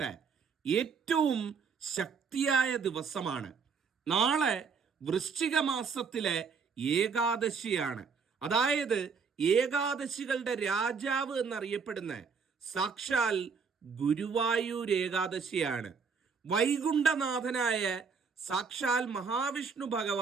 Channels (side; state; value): left; quieter; 5.5 dB